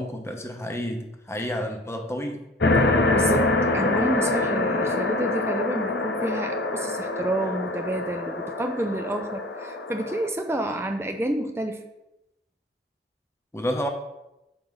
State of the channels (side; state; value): both; normal; correlation 0.44